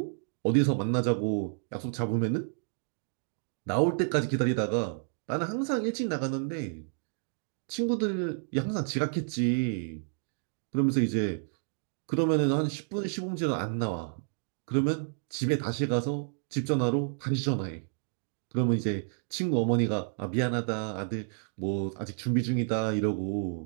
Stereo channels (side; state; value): left; silent; digital silence